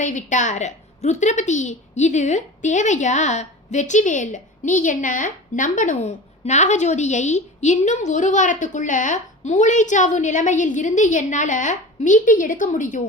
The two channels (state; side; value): normal; both; correlation 0.34